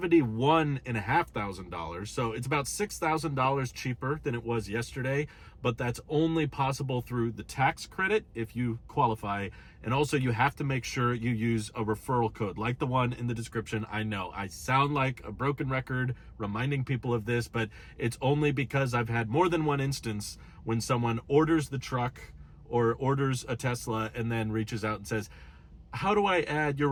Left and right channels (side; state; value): both; identical; correlation 1.00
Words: So it's about $6,000 cheaper than it was yesterday, but that's only possible through the tax credit if you qualify. And also you have to make sure you use a referral code like the one in the description. I know I sound like a broken record reminding people of this, but it's only because I've had more than one instance when someone orders the truck or orders a Tesla and then reaches out and says, how do I add your